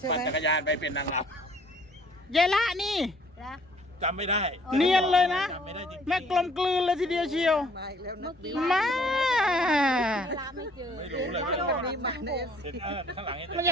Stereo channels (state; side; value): normal; both; correlation 0.59